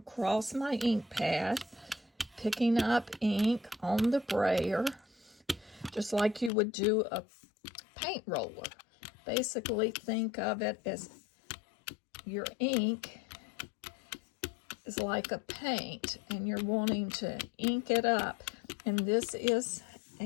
my ink pad, picking up ink on the brayer, just like you would do a paint roller. Basically, think of it as your ink is like a paint, and you're wanting to ink it up. And this is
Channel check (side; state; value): right; drops out; at 6.5 s